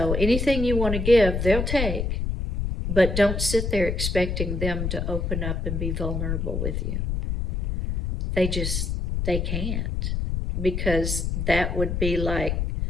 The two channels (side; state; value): left; noise; rumble, 1 dB below the sound